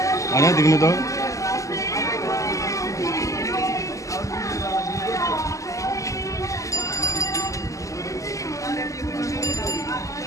आया दिखने तो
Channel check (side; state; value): right; late; 0.16 ms